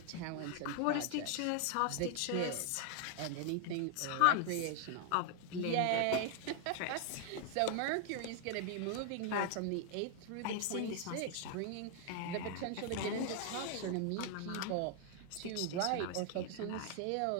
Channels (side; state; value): both; different; correlation 0.00